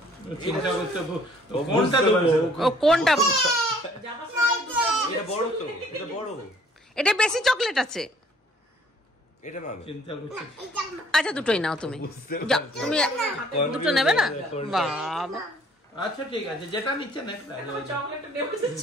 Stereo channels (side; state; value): both; normal; correlation 0.59